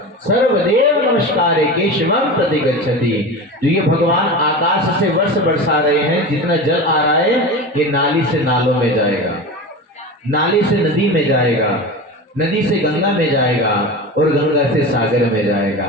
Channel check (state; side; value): normal; both; correlation 0.28